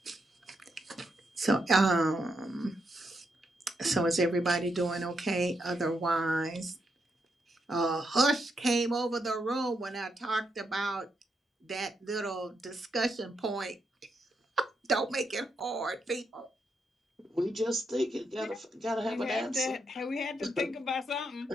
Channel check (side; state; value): both; normal; correlation 0.81